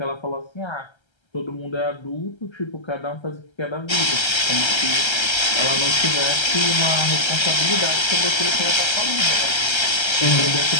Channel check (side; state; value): right; late; 1.3 ms